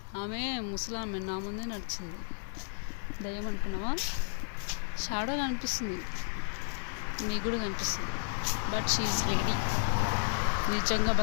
ఆమె, ముసలామె, నా ముందే నడిచింది. దయ్యం అనుకున్నావా? షాడో కనిపిస్తుంది, మీకు కూడా కనిపిస్తుంది. బట్ షీఈస్ లేడీ, నిజంగా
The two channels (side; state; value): right; silent; 55 dB below the other